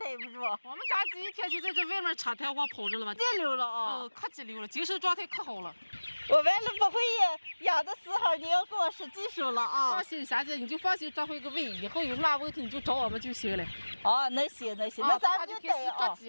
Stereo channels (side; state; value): both; inverted; correlation -1.00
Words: 不住。我们家鸡一天就在这外面插台花跑着了吧？激溜了啊！可激溜了，精神状态可好了。我完了不会养的时候，你要给我使技术了啊！放心，霞姐，你就放心抓回个尾，以后有什么问题你就找我们就行了。哦，那行，那咱们就逮抓